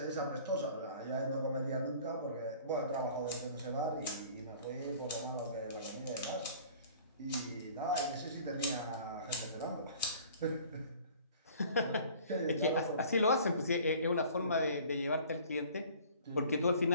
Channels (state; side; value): inverted; both; correlation -0.49